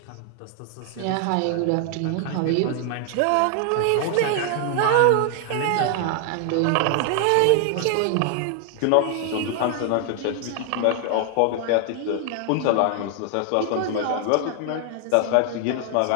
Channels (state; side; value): different; both; correlation 0.00